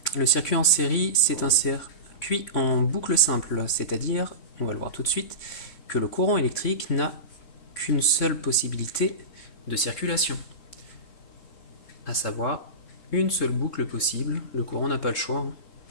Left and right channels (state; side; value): late; right; 3.6 ms